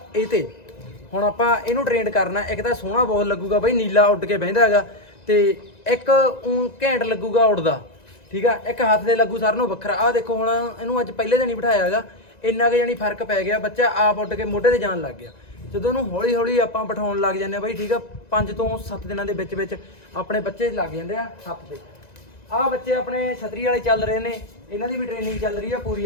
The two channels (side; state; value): right; late; 1.9 ms